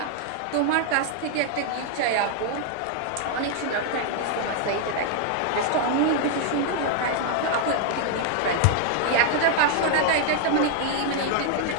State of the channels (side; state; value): both; different; correlation 0.00